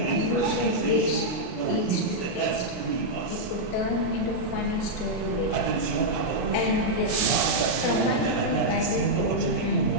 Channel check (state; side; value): late; right; 32 ms